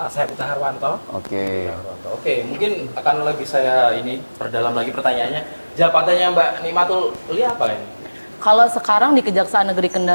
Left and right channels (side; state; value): both; inverted; correlation -1.00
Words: Saya Pita Harwanto. Oke. Oke, mungkin akan lebih saya ini perdalam lagi pertanyaannya. Jabatannya Mbak Nikmatul Ulia apa ini? Kalau sekarang di Kejaksaan Negeri